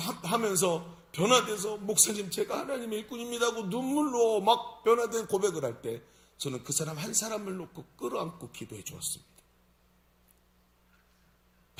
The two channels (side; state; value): both; identical; correlation 1.00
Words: 하면서 변화돼서 목사님 제가 하나님의 일꾼입니다 하고 눈물로 막 변화된 고백을 할 때 저는 그 사람 한 사람을 놓고 끌어안고 기도해 주었습니다.